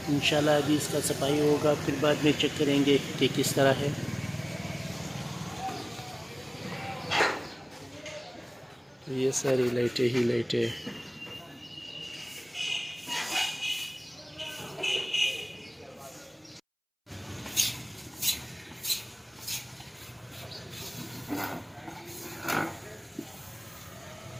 इंशाल्लाह अभी इसका सफाई होगा, फिर बाद में चेक करेंगे कि किस तरह है। तो ये सारी लाइटें ही लाइटें।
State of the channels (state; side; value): identical; both; correlation 1.00